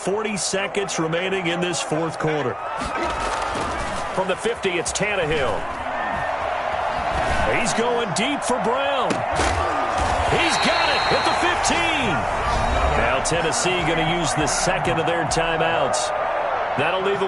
seconds remaining in this 4th quarter. From the 50, it's Tannehill. He's going deep for Brown. He's got it at the 15. Now Tennessee going to use the 2nd of their timeouts. That'll leave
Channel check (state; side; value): identical; both; correlation 1.00